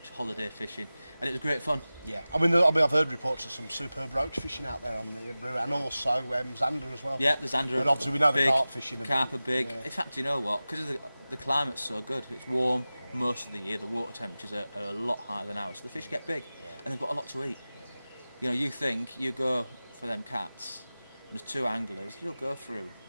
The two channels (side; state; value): both; inverted; correlation -0.97